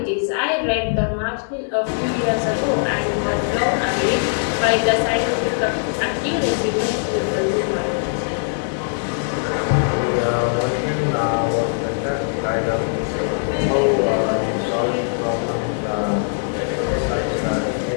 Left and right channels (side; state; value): right; silent; digital silence